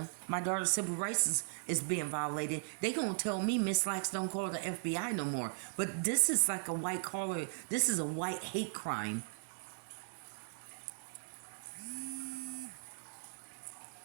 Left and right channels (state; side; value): silent; left; digital silence